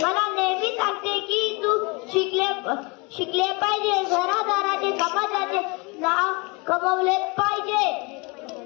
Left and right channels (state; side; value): quieter; right; 28.5 dB